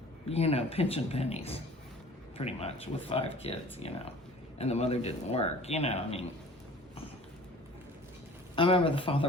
you know, pinching pennies, pretty much, with 5 kids, you know. And the mother didn't work, you know, I mean. I remember the father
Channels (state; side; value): normal; both; correlation 0.47